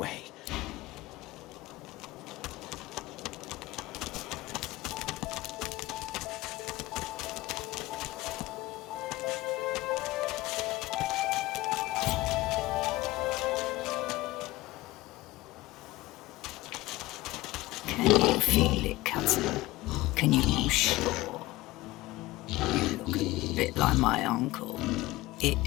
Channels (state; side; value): quieter; right; 18.7 dB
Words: Can you feel it, cousin? Can you be sure? You look a bit like my uncle. It